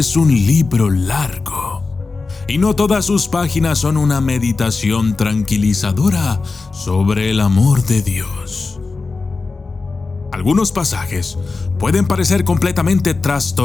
un libro largo, y no todas sus páginas son una meditación tranquilizadora sobre el amor de Dios. Algunos pasajes pueden parecer completamente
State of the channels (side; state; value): right; quieter; 4.0 dB